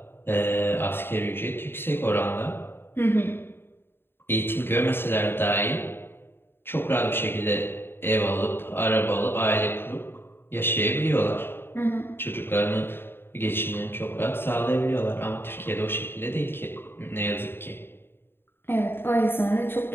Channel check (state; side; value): late; right; 0.11 ms